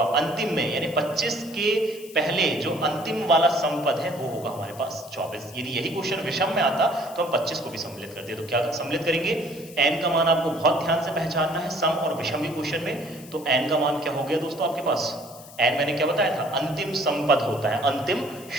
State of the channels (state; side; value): noise; left; hiss, 19 dB below the sound